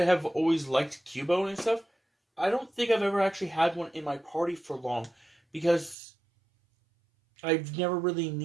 always liked Cubone and stuff, I don't think I've ever actually had one in my party for long. Because I've never really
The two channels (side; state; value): left; drops out; at 6.0 s